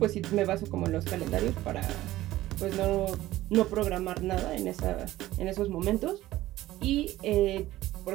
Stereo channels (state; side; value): quieter; left; 15.9 dB